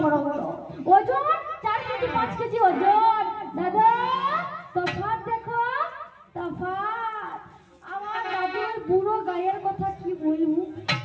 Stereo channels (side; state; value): both; identical; correlation 1.00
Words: বড়, ওজন 4 কেজি 5 কেজি ওজন। দাদা তফাৎ দেখো, তফাৎ। আমার দাদুর বুড়ো গায়ের কথা কি বলবো,